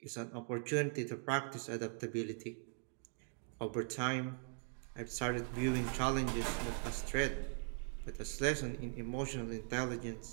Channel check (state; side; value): silent; left; 51 dB below the other